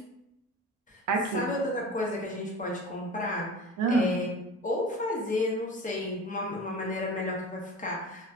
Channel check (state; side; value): normal; both; correlation 0.36